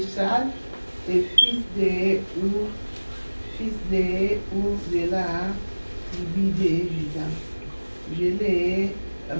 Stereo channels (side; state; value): both; inverted; correlation -1.00